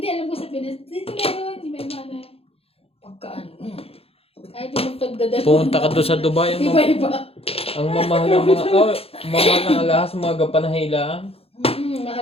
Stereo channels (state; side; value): late; right; 0.28 ms